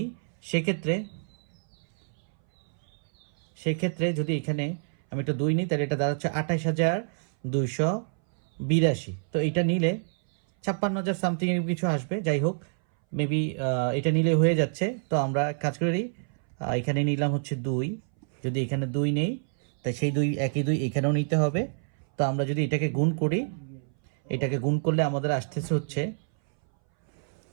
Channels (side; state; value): left; silent; 60 dB below the other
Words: সেক্ষেত্রে যদি এখানে আমি একটা 2 নিই তাহলে এটা দাঁড়াচ্ছে 28282। তো এটা নিলে 56,000 সামথিং এর কিছু আসবে। যাই হোক, মেবি এটা নিলে হয়ে যাচ্ছে। তো আমরা কাজ করি, এখানে নিলাম হচ্ছে 2। যদি এখানে 2 নেই তাই সেই 2 একই 2 এখানেও নিতে হবে। তো আমরা যদি এটাকে গুণ করি, এটাকে গুণ করলে আমাদের আসতেছে হচ্ছে